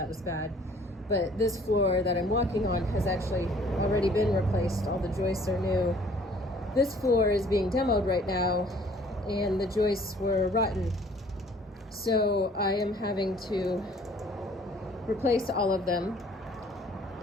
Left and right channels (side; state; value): both; normal; correlation 0.56